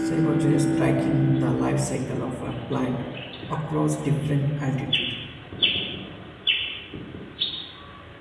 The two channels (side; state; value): both; identical; correlation 1.00